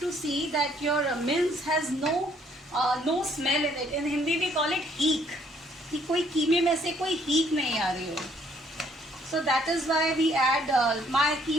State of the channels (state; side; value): normal; both; correlation 0.64